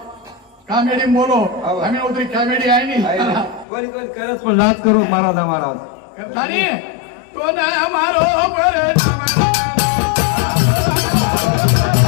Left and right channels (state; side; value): drops out; right; at 3.7 s